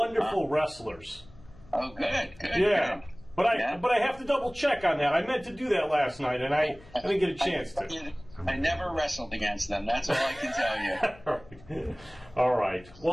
wrestlers. Oh, good. Yeah. Good. But I have to double check on that. I meant to do that last night, and I didn't get a chance to. I never wrestled against them. That's all I can tell you. All right.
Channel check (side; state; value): left; noise; hum, 23 dB below the sound